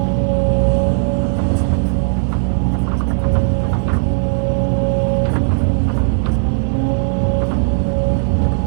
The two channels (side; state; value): left; silent; 63 dB below the other